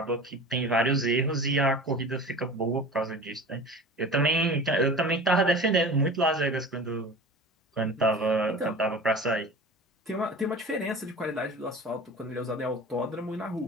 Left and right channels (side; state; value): both; normal; correlation 0.37